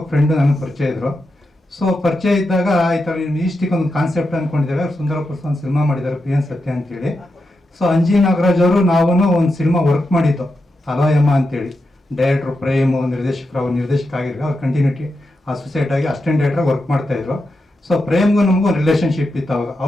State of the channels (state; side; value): normal; both; correlation 0.87